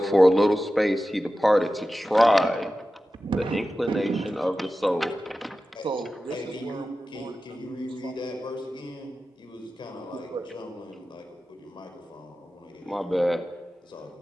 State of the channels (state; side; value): normal; both; correlation 0.94